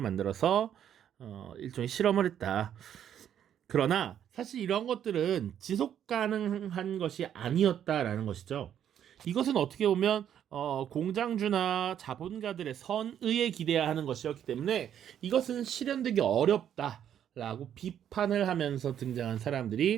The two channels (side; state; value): left; quieter; 9.7 dB